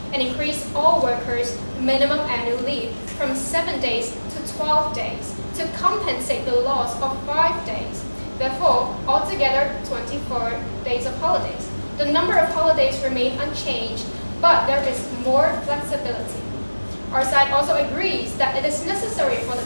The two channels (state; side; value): inverted; both; correlation -1.00